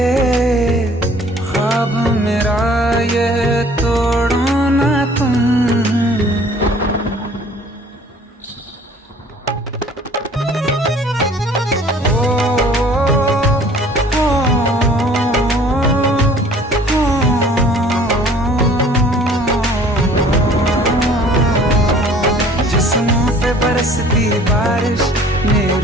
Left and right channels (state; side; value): normal; both; correlation 0.53